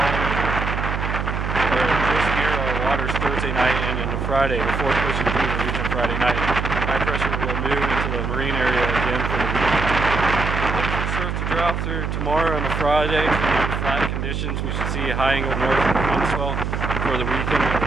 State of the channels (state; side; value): noise; right; hum, 2 dB below the sound